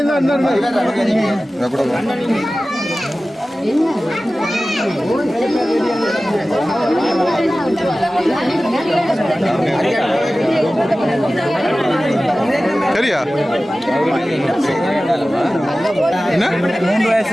சரியா என்ன 3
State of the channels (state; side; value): normal; both; correlation 0.96